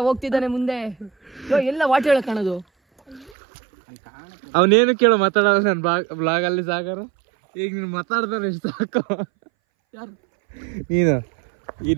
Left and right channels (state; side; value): drops out; left; at 3.4 s